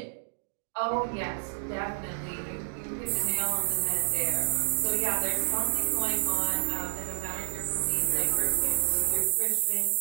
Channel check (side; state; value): left; silent; digital silence